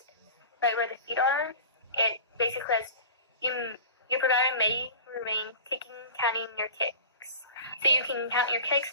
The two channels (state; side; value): inverted; both; correlation -0.36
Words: right where the feet are, it basically says your provider may remain counting your kicks. So you can count your kicks